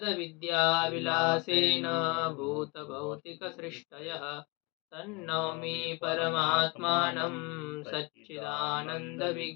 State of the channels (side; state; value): right; quieter; 27.0 dB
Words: भूतभौतिकसृष्टयः तन्नौमि परमात्मानं